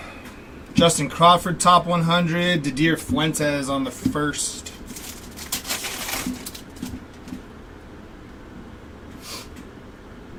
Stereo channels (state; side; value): identical; both; correlation 1.00